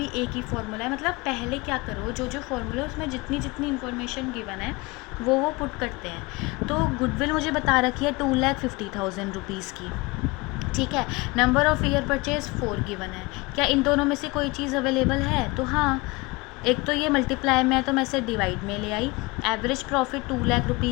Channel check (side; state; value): right; quieter; 24.2 dB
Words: एक ही फार्मूला है। मतलब पहले क्या करो, जो जो फार्मूला है उसमें जितनी जितनी इन्फॉर्मेशन गिवन है वो पुट करते हैं। तो गुडविल मुझे बता रखी है 2,50,000 रुपीज़ की। ठीक है, number of year purchase 4 given है। क्या इन दोनों में से कोई चीज़ अवेलेबल है? तो हाँ, एक तो ये मल्टीप्लाई में है तो मैं इसे डिवाइड में ले आई। एवरेज प्रॉफिट 2 लाख